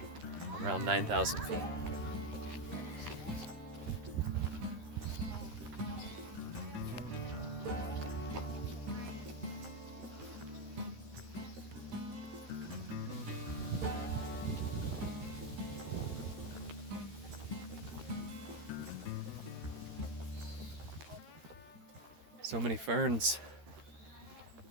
around 9,000 feet. So many ferns.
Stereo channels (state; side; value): late; left; 13 ms